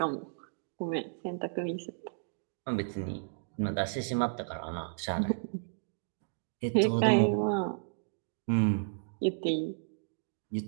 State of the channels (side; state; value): left; silent; digital silence